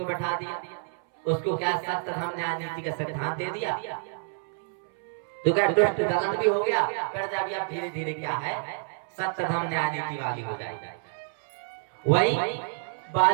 बैठा दिया, उसको क्या सत्य धर्म न्याय नीति का सिद्धांत दे दिया, तो क्या दुष्ट दलन भी हो गया, प्रजा भी अब धीरे धीरे क्या है, सत्य धर्म न्याय नीति वाली हो जाएगी। वही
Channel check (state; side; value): silent; left; 58 dB below the other